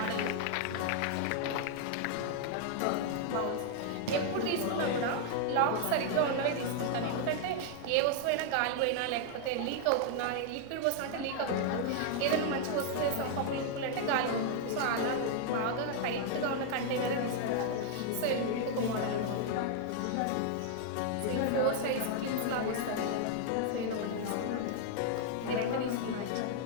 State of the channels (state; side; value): different; both; correlation 0.00